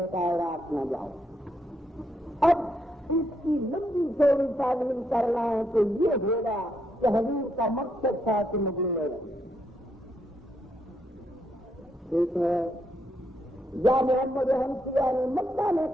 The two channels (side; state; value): both; normal; correlation 0.77